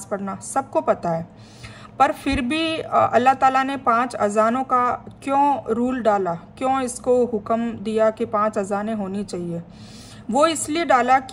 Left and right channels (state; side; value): identical; both; correlation 1.00